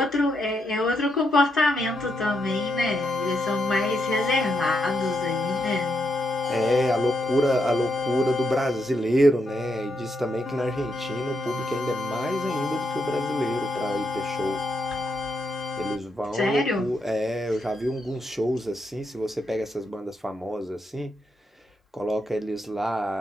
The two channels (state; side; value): normal; both; correlation 0.81